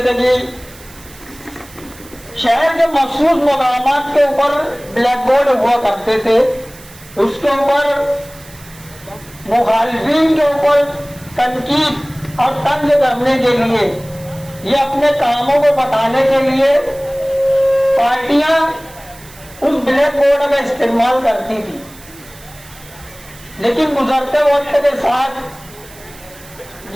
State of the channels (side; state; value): right; noise; hiss, 21 dB below the sound